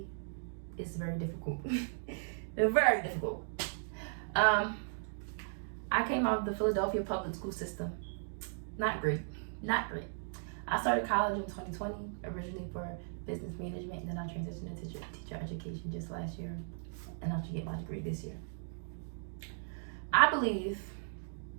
It's very difficult. It's very difficult. I came out of the Philadelphia public school system. Not great. I started college in 2020, originally for business management, and then I transitioned into teacher education just last year, and I should get my degree this year. I believe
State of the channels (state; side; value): silent; left; digital silence